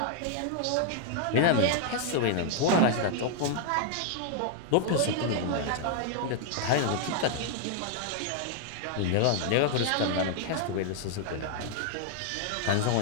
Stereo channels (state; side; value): different; both; correlation 0.00